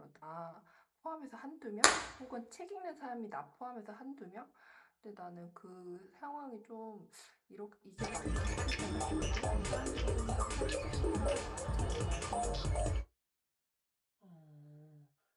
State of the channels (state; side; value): identical; both; correlation 1.00